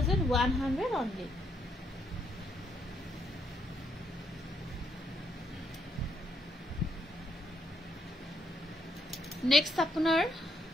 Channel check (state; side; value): normal; both; correlation 0.75